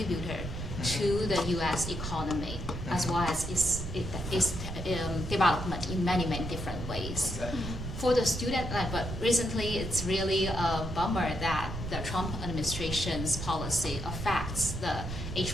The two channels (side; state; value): right; noise; rumble, 6 dB below the sound